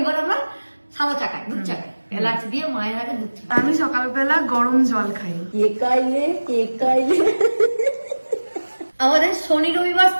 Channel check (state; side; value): inverted; both; correlation -1.00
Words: আমরা সাদা চা খাই, দুধ চা খাই, এলাচ দিয়ে মায়ের আগে দুধ চা। আমি সকালবেলা গরম জল খাই। কে খাইলে আমাদের শনি রবিবার